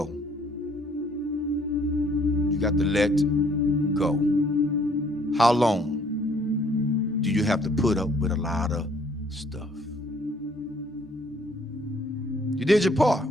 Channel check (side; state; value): both; normal; correlation 0.62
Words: You got to let go. How long do you have to put up with a lot of stuff? You did your part.